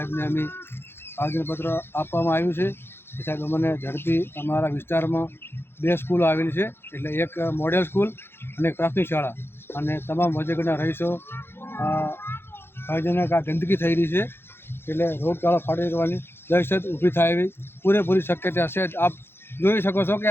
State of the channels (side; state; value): right; late; 0.11 ms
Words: અમે આવેદનપત્ર આપવામાં આવ્યું છે કે સાહેબ અમને ઝડપી અમારા વિસ્તારમાં 2 સ્કૂલો આવેલી છે, એટલે એક મોડેલ સ્કૂલ અને એક પ્રાથમિક શાળા, અને તમામ વજેગઢના રહીશો ભયજનક આ ગંદકી થઈ રહી છે, એટલે રોગચાળો ફાટી જવાની દહેશત ઊભી થાય એવી પૂરેપૂરી શક્યતા છે। આપ જોઈ શકો છો કે